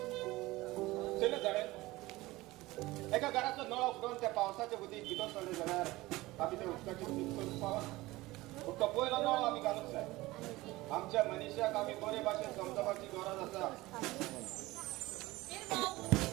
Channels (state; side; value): quieter; left; 19.5 dB